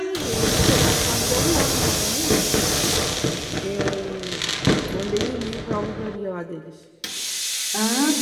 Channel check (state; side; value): identical; both; correlation 1.00